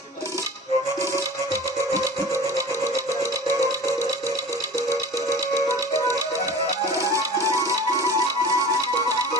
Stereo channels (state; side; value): normal; both; correlation 0.39